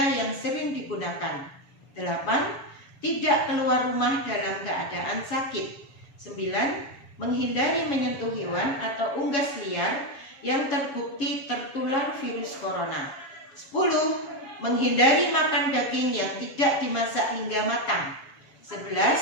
yang sering digunakan. 8. Tidak keluar rumah dalam keadaan sakit. 9. Menghindari menyentuh hewan atau unggas liar yang terbukti tertular virus corona. 10. Menghindari makan daging yang tidak dimasak hingga matang.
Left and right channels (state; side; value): late; right; 7.2 ms